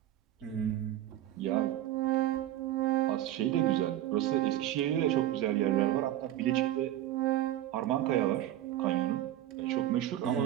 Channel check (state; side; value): quieter; left; 13.0 dB